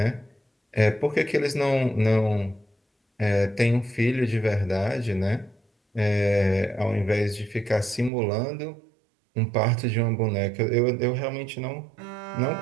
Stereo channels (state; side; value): drops out; left; at 8.1 s